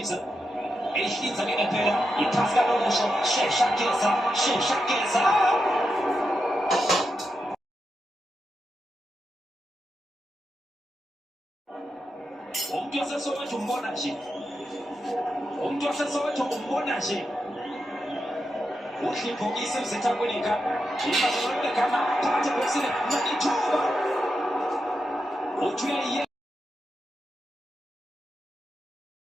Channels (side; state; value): both; normal; correlation 0.87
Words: eyihlinza-ke ngempela iphasi kanokusho sheshageza umuntu waseSoweto umbona nje udla ibhokisi uZetha Kwinika ibazolekana phakathi ebhokisini nalithuba uthi uyayiye